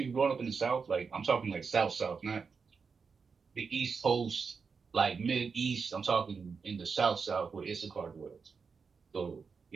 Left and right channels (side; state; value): left; quieter; 5.3 dB